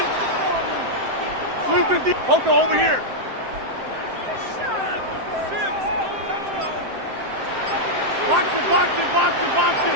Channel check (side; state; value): left; late; 7.7 ms